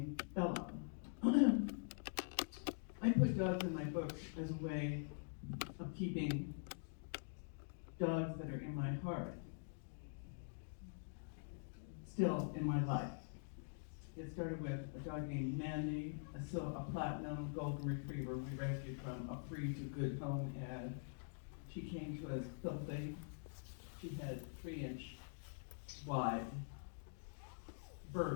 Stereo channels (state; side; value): silent; right; digital silence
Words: Bella. I put dogs in my books as a way of keeping dogs that are in my heart still in my life. It started with a dog named Mandy, a platinum golden retriever we rescued from a free to good home ad. She came to us filthy. She had 3-inch wide